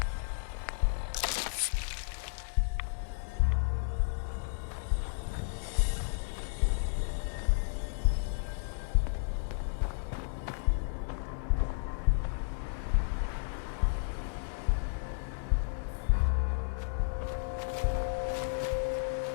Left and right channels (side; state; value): right; silent; digital silence